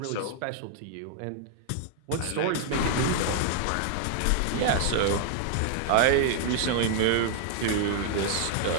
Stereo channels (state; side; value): different; both; correlation 0.00